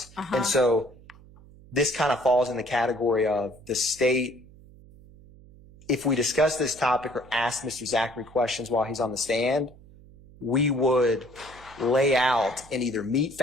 And so this kind of falls in the category of the state. If we discuss this topic or ask Mr. Zachary questions while he's on the stand, we would lay out and either meet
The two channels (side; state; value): right; noise; hum, 23 dB below the sound